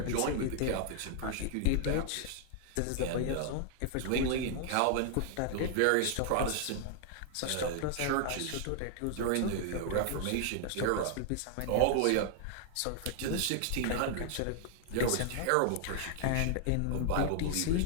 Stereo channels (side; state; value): both; different; correlation 0.00